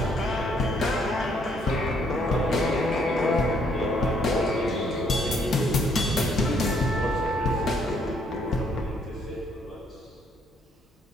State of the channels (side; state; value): both; normal; correlation 0.68